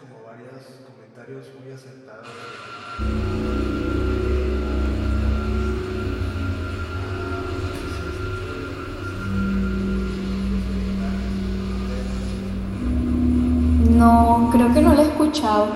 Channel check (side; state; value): both; identical; correlation 1.00